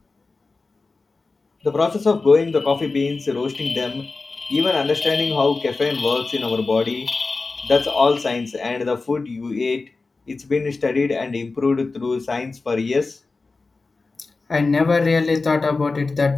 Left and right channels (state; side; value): quieter; right; 3.8 dB